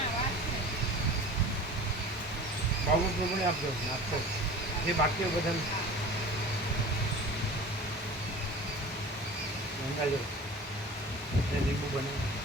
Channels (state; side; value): normal; both; correlation 0.39